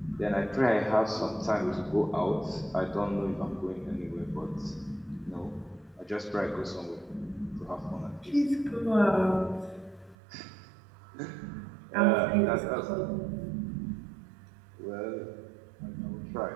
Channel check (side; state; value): left; drops out; at 10.2 s